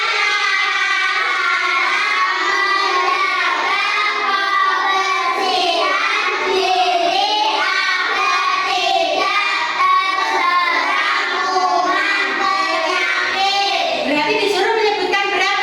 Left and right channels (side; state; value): both; identical; correlation 1.00